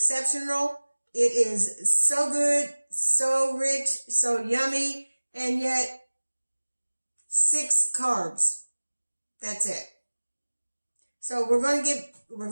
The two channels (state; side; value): inverted; both; correlation -1.00